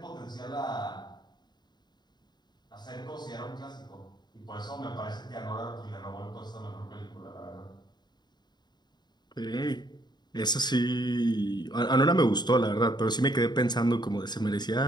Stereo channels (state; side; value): late; right; 0.21 ms